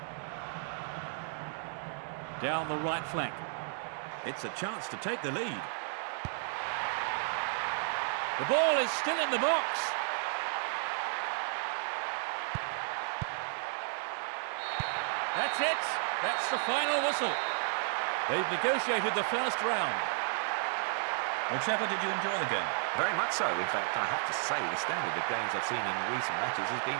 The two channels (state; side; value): silent; left; 56 dB below the other